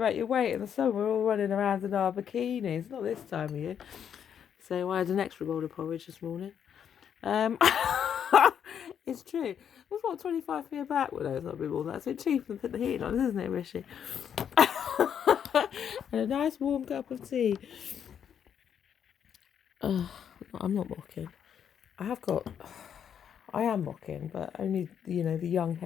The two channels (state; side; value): quieter; right; 8.4 dB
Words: weight in the summer. We're all running around in our bikinis. Not this time of year. So I had an extra bowl of porridge this morning. It's true. It's what, 25p a bag? Well, no, it's not a bit more than that. It's a bit cheaper than put the heating on, isn't it, Rishi? And a nice warm cup of tea. I'm not mocking. I am mocking, but only, the young,